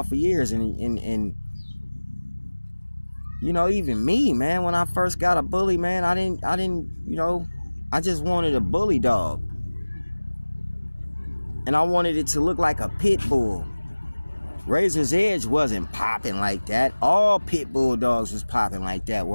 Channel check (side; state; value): both; inverted; correlation -1.00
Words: for years. And you know, even me, man, when I first got a bully, man, I didn't, you know, I just wanted a bully dog. And I wanted it to look like a pit bull. Razor's Edge wasn't popping like that. All pit bull dogs was popping like that